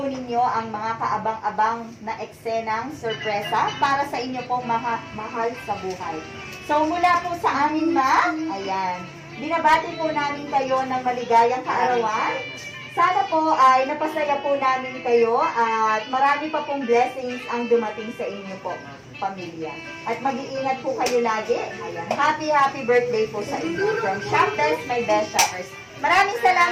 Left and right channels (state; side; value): identical; both; correlation 1.00